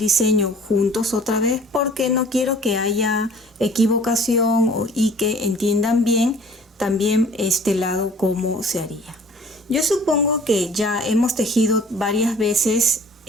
juntos otra vez porque no quiero que haya equivocación y que entiendan bien también este lado cómo se haría. Yo supongo que ya hemos tejido varias veces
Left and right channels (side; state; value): both; normal; correlation 0.51